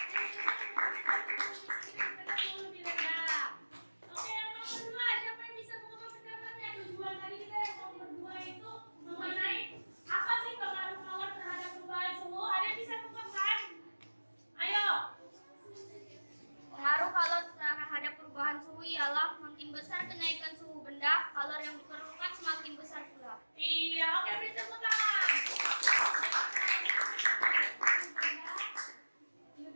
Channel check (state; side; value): inverted; both; correlation -1.00